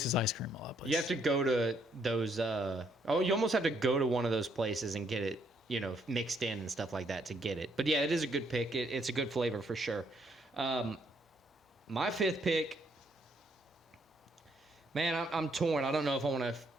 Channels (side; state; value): both; normal; correlation 0.71